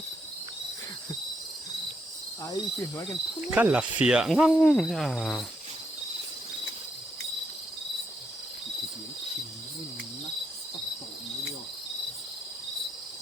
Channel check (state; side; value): normal; both; correlation 0.78